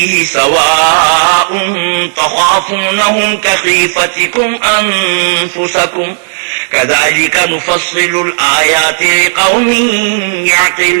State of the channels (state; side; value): silent; left; digital silence